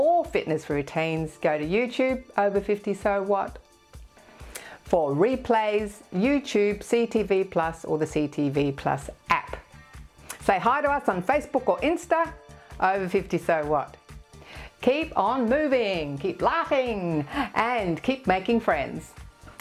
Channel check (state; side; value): identical; both; correlation 1.00